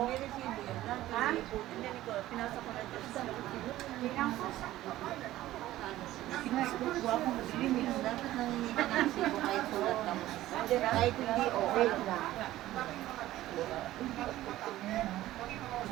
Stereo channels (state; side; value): quieter; left; 15.1 dB